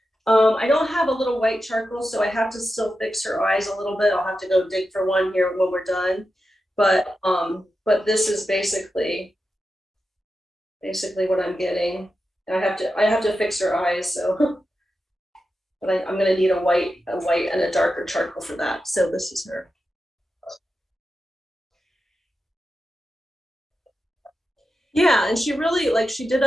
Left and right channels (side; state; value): both; normal; correlation 0.90